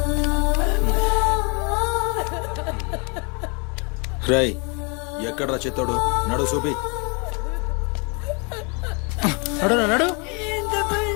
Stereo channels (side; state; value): right; quieter; 33.5 dB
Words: రై ఎక్కడ్రా చిత్తోడు? నడు చూపి. నడు నడు. ఎంత పని